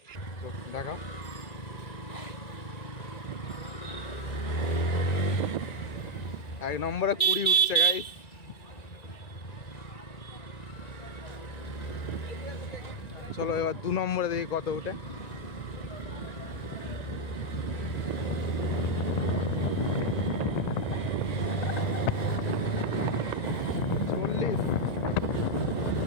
দেখা 1 নম্বরে 20 উঠছে গাইস। চলো এবার 2 নম্বরে দেখি কত উঠে।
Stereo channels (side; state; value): right; late; 1.9 ms